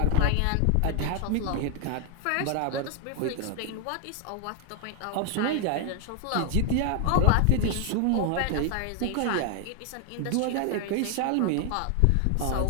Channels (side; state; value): both; different; correlation 0.00